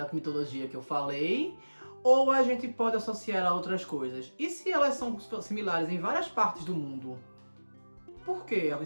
mitologia que eu falei, ou a gente pode associar a outras coisas? E se elas são similares em várias partes do mundo? Por que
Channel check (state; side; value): inverted; both; correlation -1.00